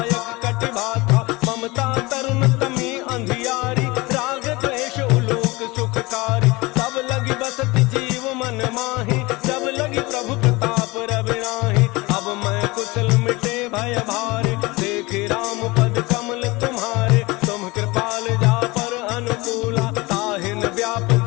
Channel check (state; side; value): quieter; right; 23.1 dB